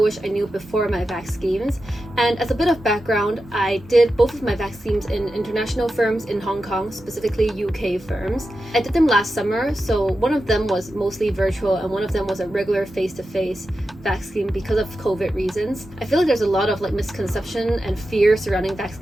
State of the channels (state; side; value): normal; both; correlation 0.91